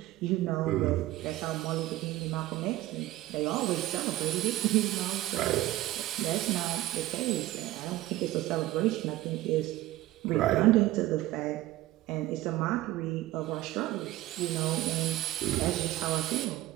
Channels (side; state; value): left; quieter; 16.1 dB